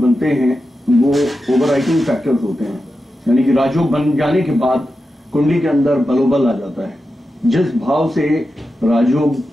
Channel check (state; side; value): normal; both; correlation 0.90